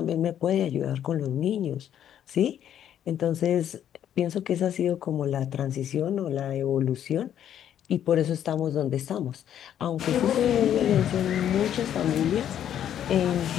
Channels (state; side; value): quieter; right; 10.2 dB